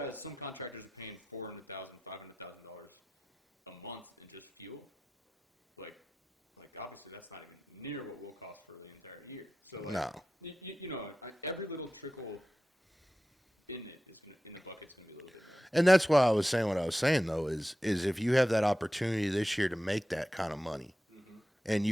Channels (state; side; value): normal; both; correlation 0.93